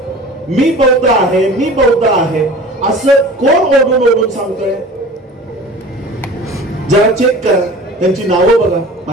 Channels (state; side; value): normal; both; correlation 0.40